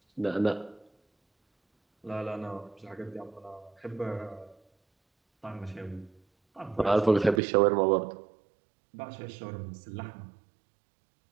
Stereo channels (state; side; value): drops out; left; at 7.4 s